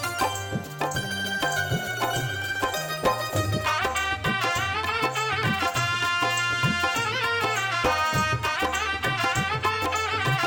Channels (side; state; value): both; identical; correlation 1.00